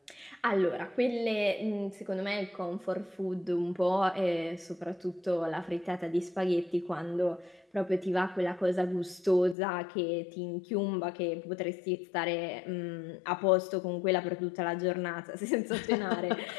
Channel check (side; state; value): right; drops out; at 9.6 s